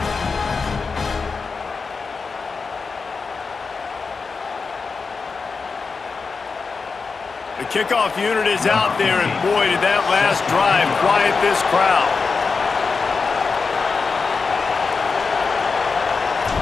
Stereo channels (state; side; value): quieter; right; 4.7 dB